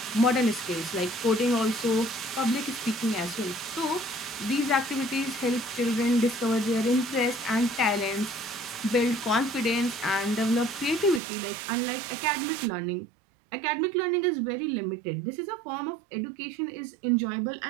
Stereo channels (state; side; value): drops out; left; at 11.2 s